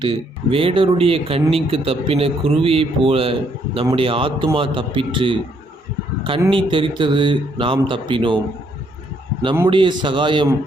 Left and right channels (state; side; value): normal; both; correlation 0.70